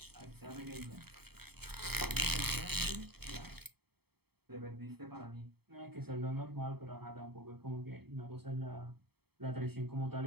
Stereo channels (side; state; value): left; late; 0.96 ms